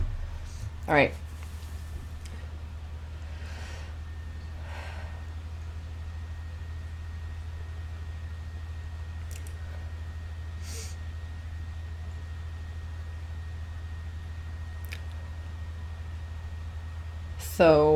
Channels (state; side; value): identical; both; correlation 1.00